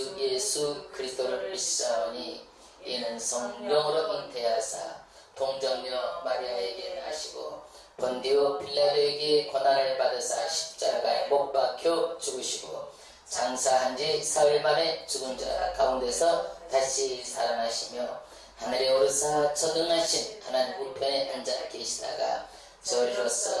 예수 그리스도를 믿사오니 이는 성령으로 잉태하사 동정녀 마리아에게 나시고 본디오 빌라도에게 고난을 받으사 십자가에 못 박혀 죽으시고 장사한 지 사흘 만에 죽은 자 가운데서 다시 살아나시며 하늘에 오르사 전능하신 하나님 우편에 앉아 계시다가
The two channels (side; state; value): both; identical; correlation 1.00